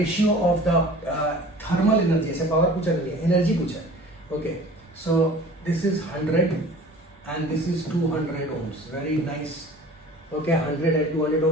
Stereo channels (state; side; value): normal; both; correlation 0.44